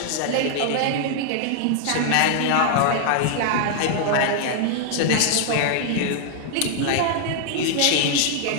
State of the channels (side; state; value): both; different; correlation 0.00